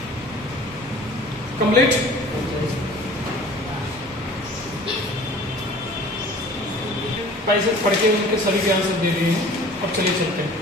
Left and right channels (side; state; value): both; normal; correlation 0.46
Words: कंप्लीट। पैसे पढ़ के उनके सभी के आंसर दे दिए हैं। अब चलिए चलते हैं।